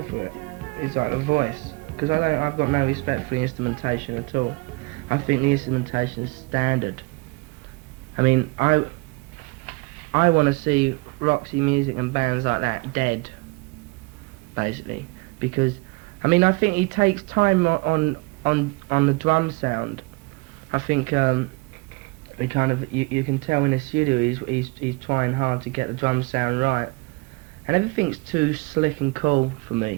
for it. It's like the voice. Because I've got no respect for the instrumentation at all. I think the instrumentation is standard. I mean, I want to see Roxy Music and bands like that dead, basically, because I mean I think he takes time on the drum sound. I think he kind of you can tell in the studio he's trying hard to get the drum sound right, and everything's too slick and cool for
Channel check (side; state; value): left; quieter; 26.9 dB